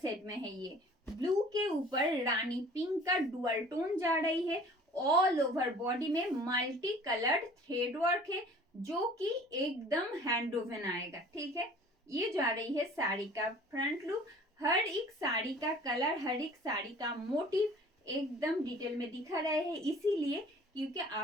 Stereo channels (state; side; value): normal; both; correlation 0.48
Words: set में है ये. Blue के ऊपर रानी पिंक का डुअल टोन जा रही है. ऑल ओवर बॉडी में मल्टी कलर्ड थ्रेड वर्क है जो कि एकदम हैंड वोवन आएगा. ठीक है, ये जा रही है साड़ी का फ्रंट लुक. हर एक साड़ी का कलर, हर एक साड़ी का मोटिव एकदम डिटेल में दिखा रहे हैं, इसीलिए क्योंकि